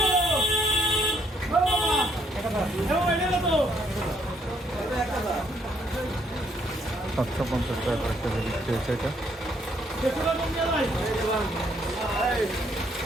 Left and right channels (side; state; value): both; normal; correlation 0.70